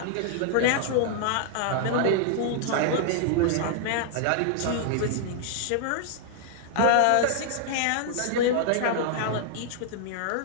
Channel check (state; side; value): different; both; correlation 0.00